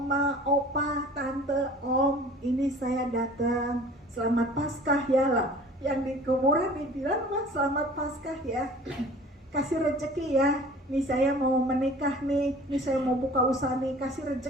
opa, tante, om, ini saya datang, selamat Paskah ya lah. Yang di kuburan dibilang, wah selamat Paskah ya, kasih rezeki ya, nih saya mau menikah nih saya mau buka usaha nih, kasih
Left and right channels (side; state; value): both; normal; correlation 0.46